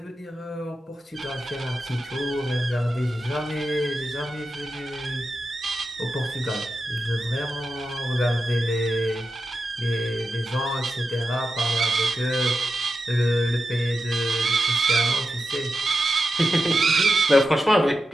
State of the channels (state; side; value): normal; both; correlation 0.90